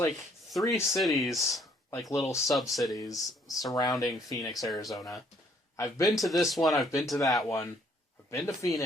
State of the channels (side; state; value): both; normal; correlation 0.65